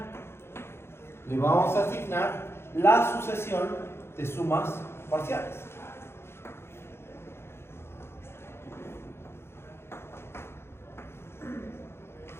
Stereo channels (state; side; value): late; right; 0.12 ms